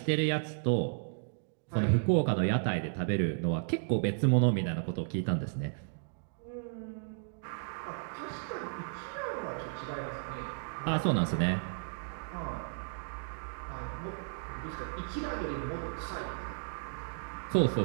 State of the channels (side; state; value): left; silent; digital silence